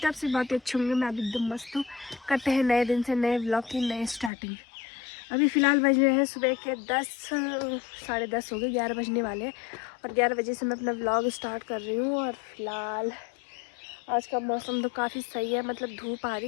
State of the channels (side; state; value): right; drops out; at 4.3 s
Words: हैं आपसे बहुत ही अच्छे होंगे। मैं अभी एकदम मस्त हूँ। करते हैं नए दिन से नए व्लॉग की नई स्टार्टिंग। अभी फ़िलहाल बज रहे हैं सुबह के 10 साढ़े 10 हो गए, 11 बजने वाले हैं। और 11 बजे से मैं अपना व्लॉग स्टार्ट कर रही हूँ। और फिलहाल आज का मौसम तो काफ़ी सही है, मतलब धूप आ